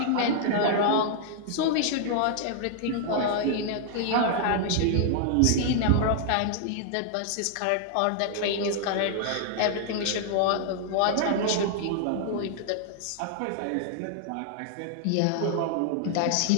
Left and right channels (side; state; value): both; different; correlation -0.01